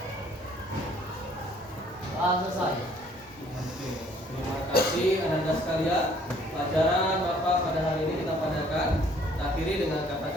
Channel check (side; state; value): both; normal; correlation 0.60